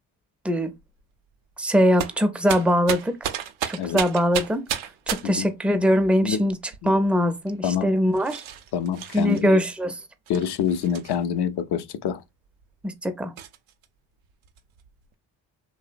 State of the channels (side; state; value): both; normal; correlation 0.70